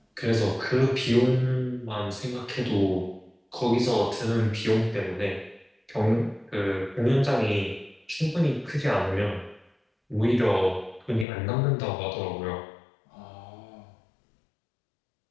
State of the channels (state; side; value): drops out; right; at 11.2 s